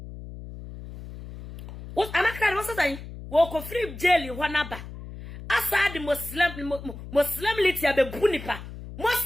what Amankrado was saying wo ko free jail ho na ba asa di Muslim liti abe bunipa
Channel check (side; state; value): left; noise; hum, 12 dB below the sound